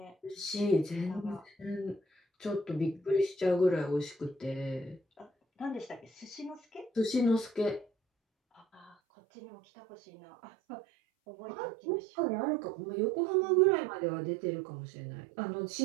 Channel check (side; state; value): left; drops out; at 9.0 s